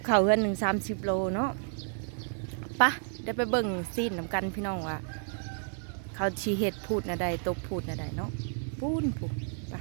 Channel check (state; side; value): silent; left; 57 dB below the other